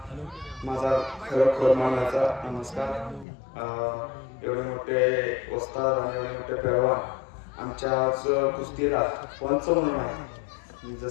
माझा खरोखर मानाचा नमस्कार. एवढे मोठे वस्ताद आणि एवढे मोठे पैलवान आमच्याच कुस्तीला पंच म्हणून आहे.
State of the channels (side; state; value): right; drops out; at 3.2 s